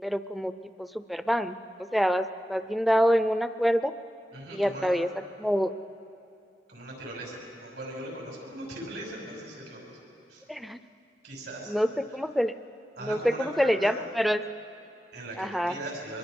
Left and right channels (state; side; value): normal; both; correlation 0.91